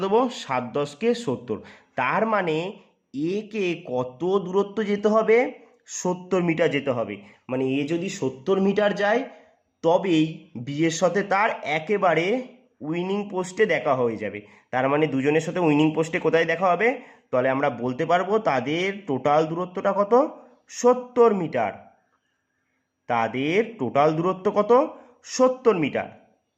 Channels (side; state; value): both; identical; correlation 1.00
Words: দেবো, 7 10 70, তার মানে এ কে কত দূরত্ব যেতে হবে, 70 মিটার যেতে হবে, মানে এ যদি 70 মিটার যায় তবেই বি এর সাথে তার একেবারে উইনিং পোস্টে দেখা হয়ে যাবে। তার মানে দুজনের সাথে উইনিং পোস্টে কোথায় দেখা হবে, তাহলে আমরা বলতে পারবো তাদের টোটাল দূরত্বটা কত, 70 মিটার, তাদের টোটাল দূরত্ব কত 70 মিটার,